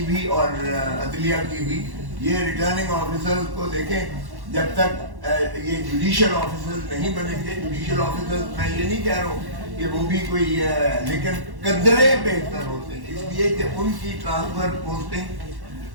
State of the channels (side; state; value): left; late; 1.1 ms